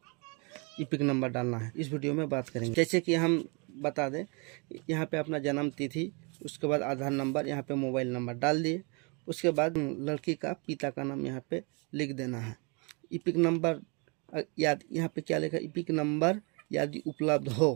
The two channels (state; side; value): quieter; left; 32.4 dB